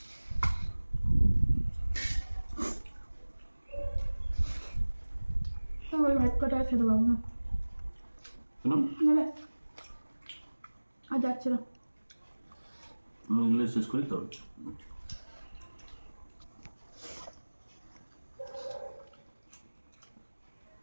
ওই ভাত কটা আর খেতে পারবো না, কেন? নেবে আর যাচ্ছে না। আমি এগুলো শেষ করি তো।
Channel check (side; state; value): both; inverted; correlation -1.00